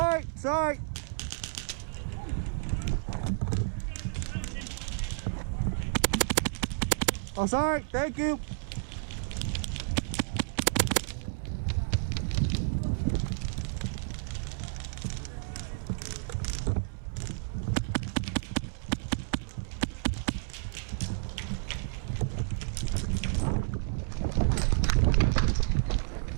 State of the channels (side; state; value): left; silent; 57 dB below the other